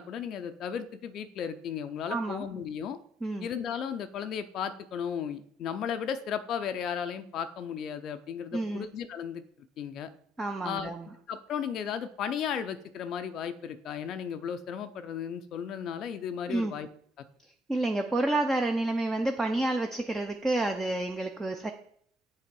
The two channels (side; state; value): both; normal; correlation 0.71